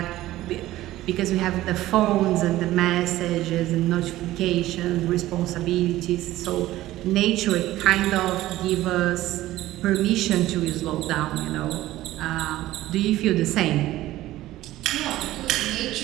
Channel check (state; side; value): quieter; left; 15.7 dB